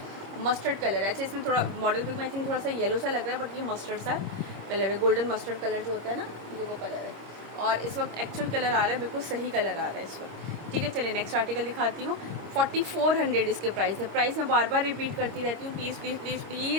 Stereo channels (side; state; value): left; late; 26 ms